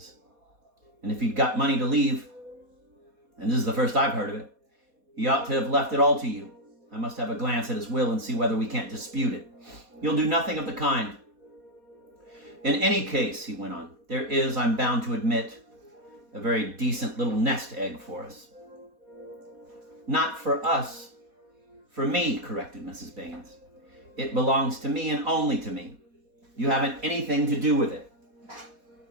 And if he'd got money to leave, and this is the first I've heard of it, he ought to have left it all to you. I must have a glance at his will and see whether we can't dispute it. You'll do nothing of the kind. In any case, he went on, there is, I'm bound to admit, a very decent little nest egg for us. Not for us. For me, corrected Mrs. Baines. It belongs to me and only to me. You haven't anything to do with it.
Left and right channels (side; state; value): left; late; 4.2 ms